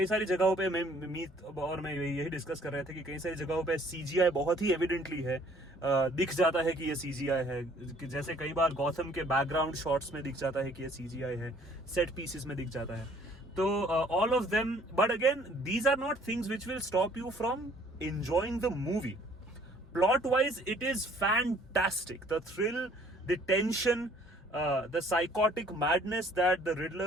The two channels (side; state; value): both; normal; correlation 0.58